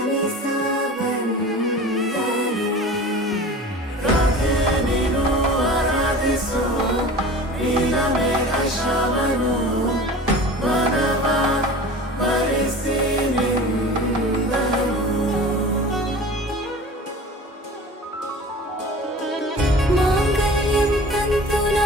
ಬಂದನು, ರಾಧೆ ನೀನು ಆರಾಧಿಸೋ ನೀಲಮೇಘ ಶ್ರಾವಣೋ. ವನವ ವರಿಸಿ ನಿಂದನು, ಮಾಂಗಲ್ಯಂ ತಂತು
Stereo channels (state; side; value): normal; both; correlation 0.39